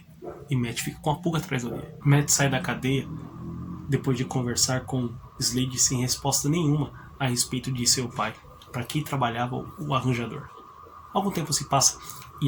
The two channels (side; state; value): both; identical; correlation 1.00